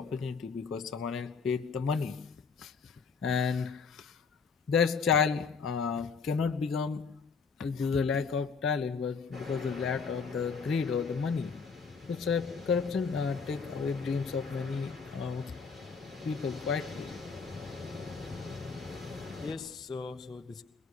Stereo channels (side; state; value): right; quieter; 5.4 dB